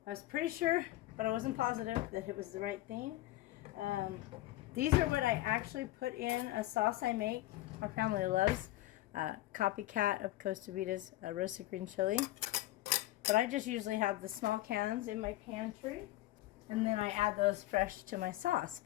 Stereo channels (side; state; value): right; quieter; 16.5 dB